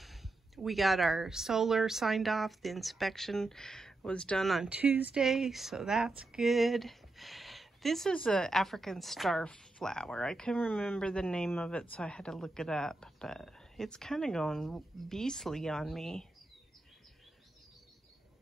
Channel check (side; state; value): left; quieter; 3.0 dB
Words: We got our solar signed off. The inspection was done on Tuesday, so that's good. This is an African star flower. I couldn't remember the name of it, so I had to look it up, but it's kind of going beastly on me.